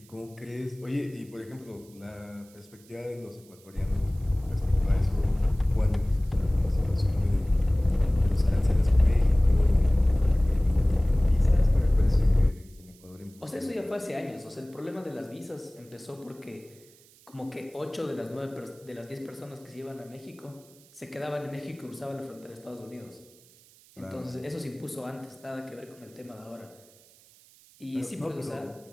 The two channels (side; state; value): right; noise; hiss, 27 dB below the sound